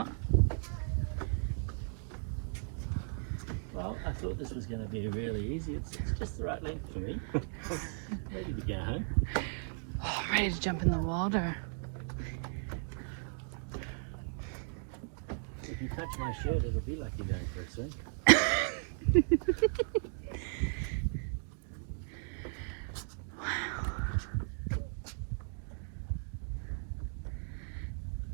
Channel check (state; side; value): silent; left; 54 dB below the other